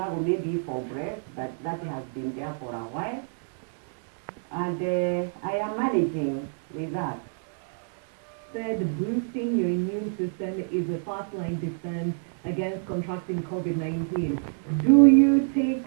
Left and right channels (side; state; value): left; silent; digital silence